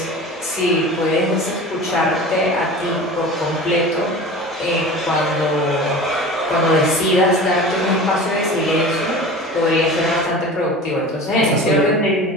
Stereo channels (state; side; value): normal; both; correlation 0.36